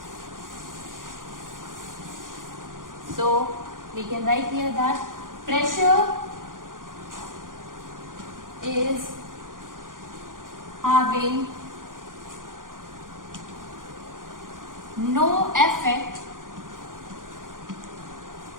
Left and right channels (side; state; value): left; late; 0.90 ms